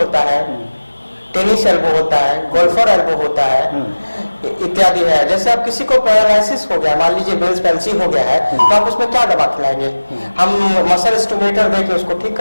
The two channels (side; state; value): both; inverted; correlation -1.00